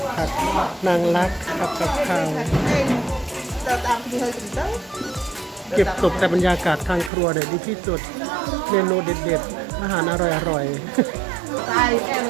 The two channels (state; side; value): drops out; left; at 7.1 s